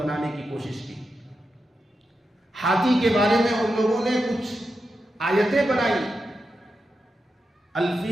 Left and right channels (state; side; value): normal; both; correlation 0.88